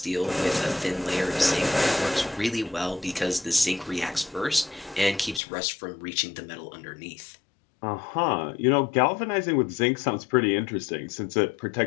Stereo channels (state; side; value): drops out; right; at 5.4 s